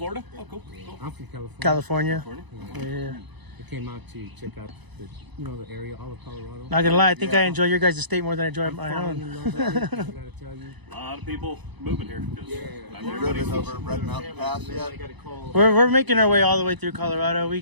Oh, cool. I'm from California. Yeah. I came out to check out the, the area, all of Colorado. Not gonna lie, I think I enjoy your guys' state more than I enjoy my own. A lot of people moving here. Have you driven over Red Mountain Pass yet? We're making our way all the way through Colorado. We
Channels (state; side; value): late; left; 1.0 ms